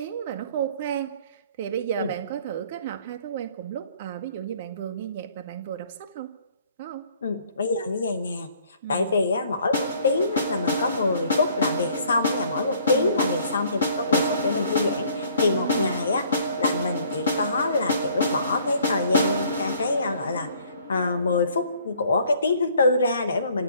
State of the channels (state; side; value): inverted; both; correlation -0.59